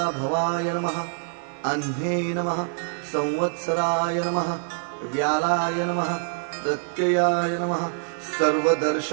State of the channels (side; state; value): left; silent; 62 dB below the other